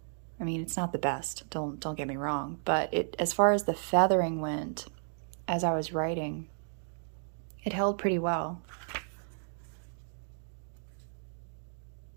I mean, it's not the best. Don't get me wrong, but as far as the feathering went, as I was writing, it held pretty well.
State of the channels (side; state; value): left; silent; digital silence